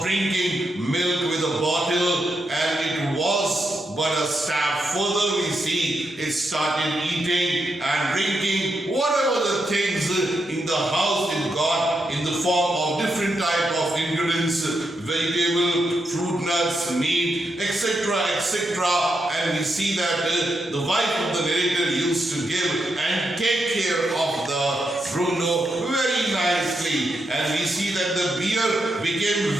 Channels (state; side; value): normal; both; correlation 0.83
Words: drinking milk with a bottle, and it was but a step further. We see it started eating and drinking whatever the things in the house it got in the form of different type of ingredients, vegetable, fruit, nuts, meat, etc., etc. And we see that the wife of the narrator used to give and take care of the Bruno very nicely. And we see that the bear became